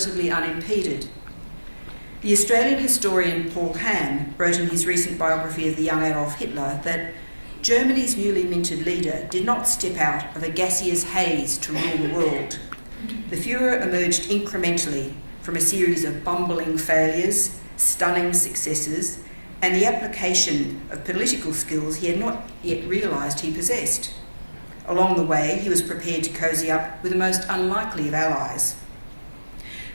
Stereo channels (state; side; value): inverted; both; correlation -1.00